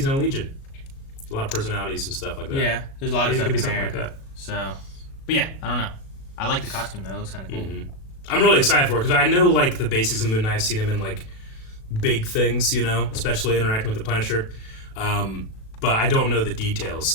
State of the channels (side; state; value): right; late; 37 ms